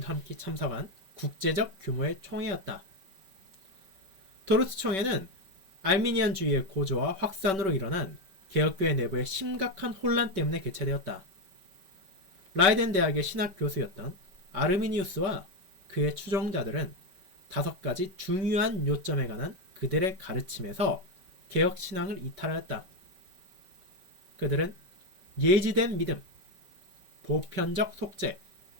함께 참석한 국제적 규모의 총회였다. 도르트 총회는 알미니안주의의 고조와 확산으로 일어난 개혁교회 내부의 심각한 혼란 때문에 개최되었다. 라이덴 대학의 신학 교수였던 아르미니우스와 그의 추종자들은 5가지 중요한 요점에 관한 그들의 가르침에서 개혁 신앙을 이탈하였다. 그들은 예지된 믿음, 보편적 속죄,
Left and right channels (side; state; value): left; late; 5.2 ms